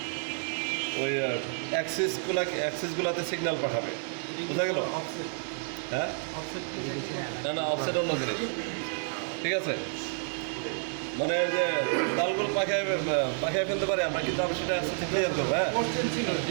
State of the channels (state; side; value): silent; left; 58 dB below the other